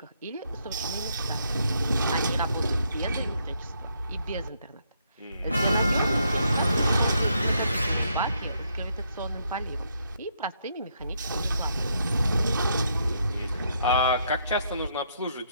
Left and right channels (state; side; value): inverted; both; correlation -0.74